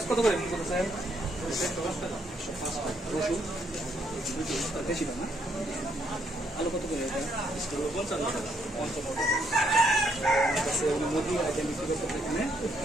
কত করে বিক্রি করতেছেন? রসুন বেশি দাম না? আলু কত করে?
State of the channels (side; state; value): both; normal; correlation 0.73